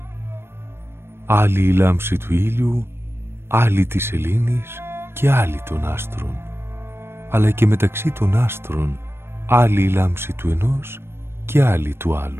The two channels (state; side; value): late; left; 0.12 ms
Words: Άλλη η λάμψη του ήλιου, άλλη της σελήνης και άλλη των άστρων. Αλλά και μεταξύ των άστρων άλλη η λάμψη του ενός και άλλη του